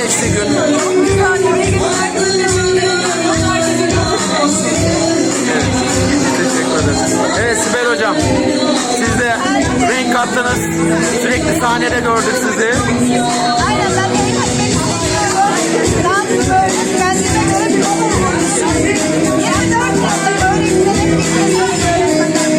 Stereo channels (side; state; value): both; identical; correlation 1.00